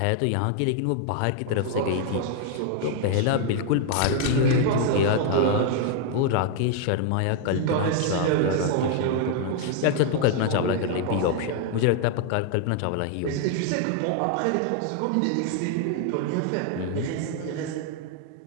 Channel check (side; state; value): both; different; correlation 0.00